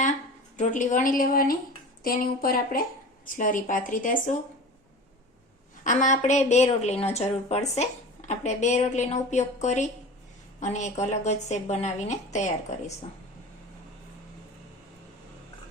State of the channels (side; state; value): both; normal; correlation 0.35